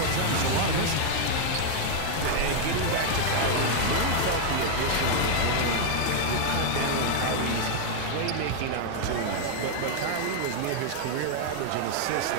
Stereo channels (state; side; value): different; both; correlation 0.00